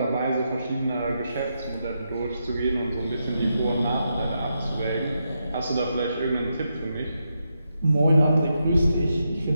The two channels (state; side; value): inverted; both; correlation -0.84